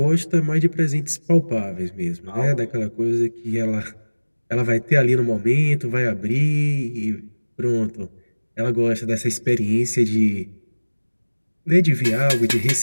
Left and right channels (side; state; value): both; inverted; correlation -1.00